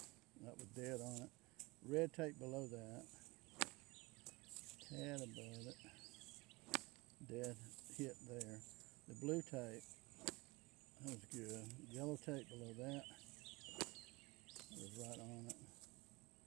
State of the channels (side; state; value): left; quieter; 23.7 dB